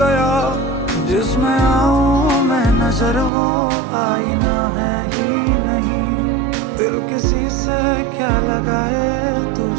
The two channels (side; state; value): left; drops out; at 3.3 s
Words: गया, जिसमें आऊं मैं नजर वो आईना है ही नहीं। दिल किसी से क्या लगाए,